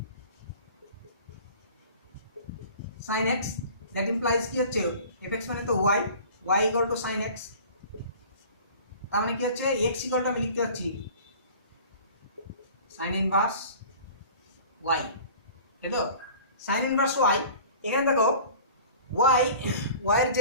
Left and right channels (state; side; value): inverted; both; correlation -0.44